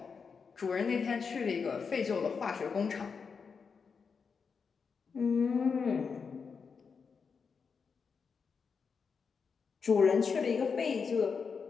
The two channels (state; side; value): quieter; right; 5.6 dB